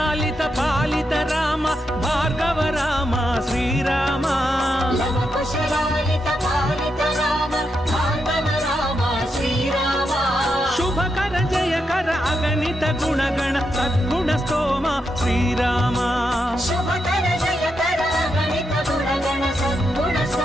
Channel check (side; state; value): both; normal; correlation 0.84